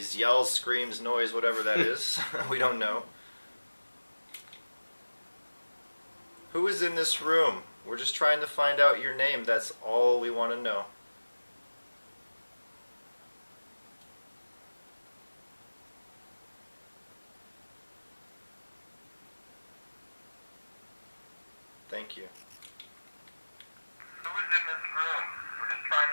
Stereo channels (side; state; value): both; inverted; correlation -1.00